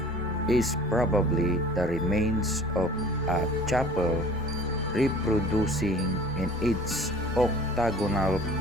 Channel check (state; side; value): normal; both; correlation 0.46